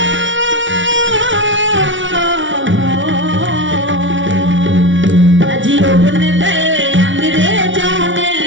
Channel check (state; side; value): late; left; 0.56 ms